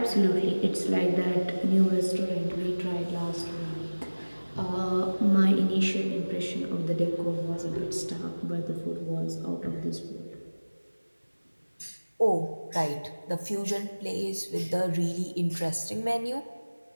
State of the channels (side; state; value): both; inverted; correlation -1.00